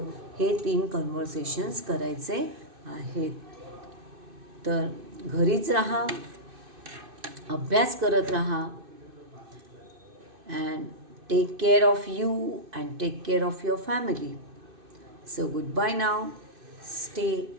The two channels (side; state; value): left; late; 2.6 ms